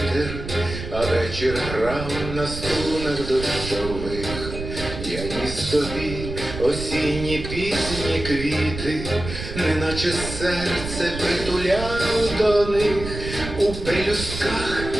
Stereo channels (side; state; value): right; noise; rumble, 8 dB below the sound